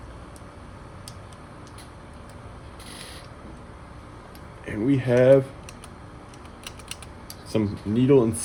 And we have some needle and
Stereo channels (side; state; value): both; identical; correlation 1.00